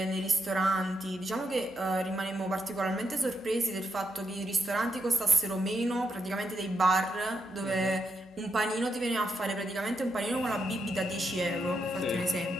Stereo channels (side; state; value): both; normal; correlation 0.82